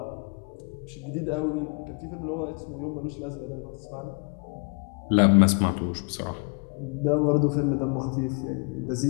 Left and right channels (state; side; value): quieter; right; 37.7 dB